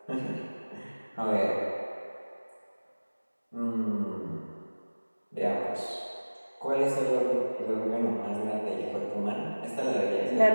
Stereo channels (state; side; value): inverted; both; correlation -1.00